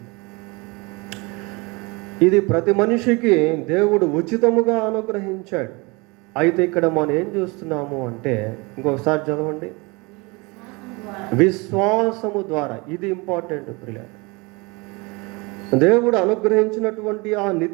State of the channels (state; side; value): quieter; left; 26.9 dB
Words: ఇది ప్రతి మనిషికి దేవుడు ఉచితముగా అనుగ్రహించాడు. అయితే ఇక్కడ మనం ఏం చూస్తున్నాము అంటే, ఇంకొకసారి చదవండి, విశ్వాసము ద్వారా. ఇది ఇంపార్టెంట్ ప్రియులారా. దేవుడు అనుగ్రహించినటువంటి ఆ